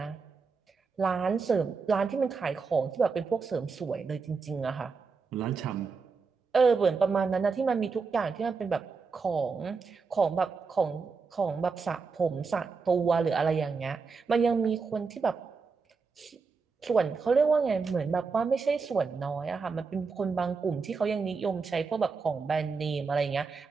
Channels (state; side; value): quieter; left; 4.8 dB